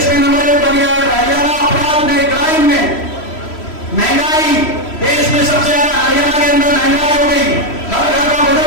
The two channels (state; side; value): late; right; 3.1 ms